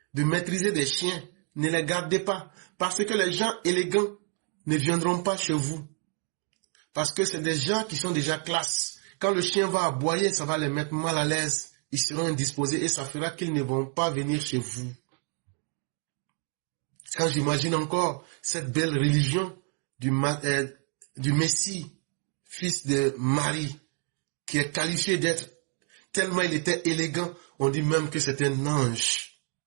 de maîtriser des chiens, ne les gardez pas parce que les gens élégants ne viendront pas chez vous. Parce que c'est des gens qui sont déjà classe. Quand le chien va aboyer, ça va les mettre mal à l'aise. Ils seront indisposés et ça fera qu'ils ne vont pas venir chez vous. Quand j'imagine encore cette belle religion du Messie, fils de Marie, qui est qualifié d'être, tellement il était élégant, on dit même que c'est un ange.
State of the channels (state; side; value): quieter; left; 38.9 dB